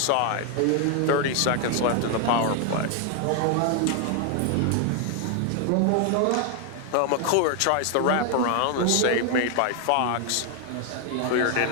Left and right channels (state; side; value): different; both; correlation 0.00